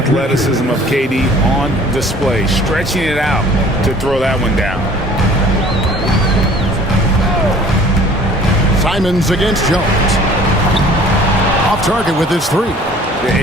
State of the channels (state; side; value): normal; both; correlation 0.51